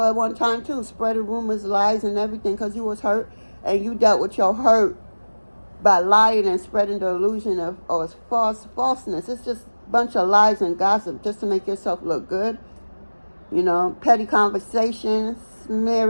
at one time too, spreading rumors, lies, and everything because you was hurt, and you dealt with your hurt by lying and spreading the illusion of falseness. It's just a bunch of lies and gossip just to make yourself look good. You know, petty conversations,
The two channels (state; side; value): inverted; both; correlation -1.00